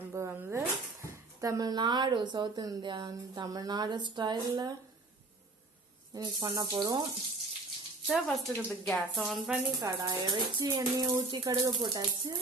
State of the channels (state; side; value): quieter; left; 3.3 dB